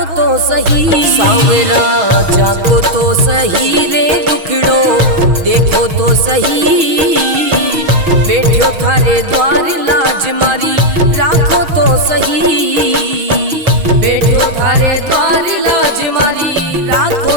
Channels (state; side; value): late; left; 6.3 ms